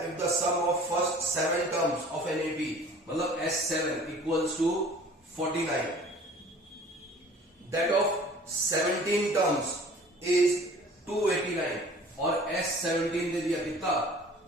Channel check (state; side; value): normal; both; correlation 0.48